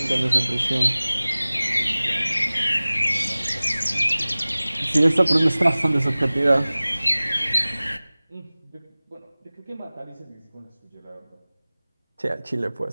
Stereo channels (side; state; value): both; inverted; correlation -0.99